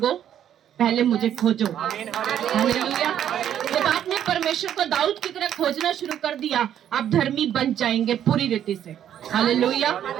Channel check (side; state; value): left; quieter; 10.2 dB